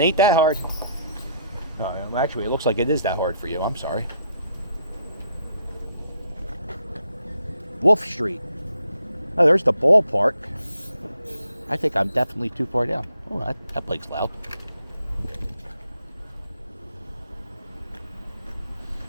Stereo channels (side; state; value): both; inverted; correlation -0.70